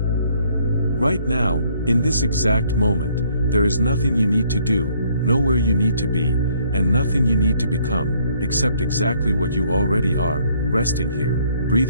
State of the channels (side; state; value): both; inverted; correlation -0.65